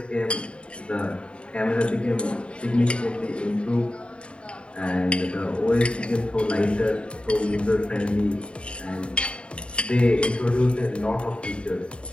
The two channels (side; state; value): right; late; 0.056 ms